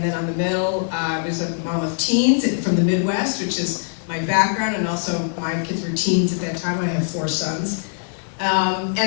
then on the middle, I was a mom of teens from the Midwest, which is my background, and also my kids were teens at that time. I have 4 sons.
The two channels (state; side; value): silent; right; 64 dB below the other